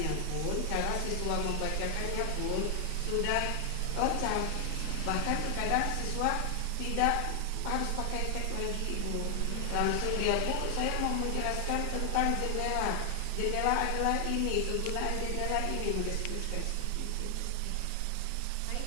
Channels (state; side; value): different; both; correlation 0.00